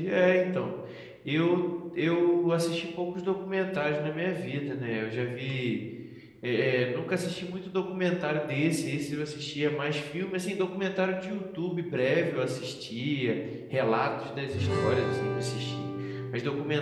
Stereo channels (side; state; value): both; identical; correlation 1.00